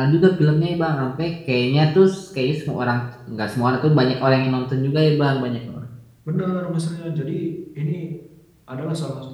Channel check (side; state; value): both; identical; correlation 1.00